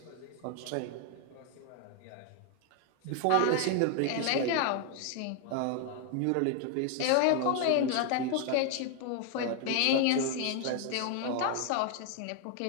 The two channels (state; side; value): different; both; correlation 0.00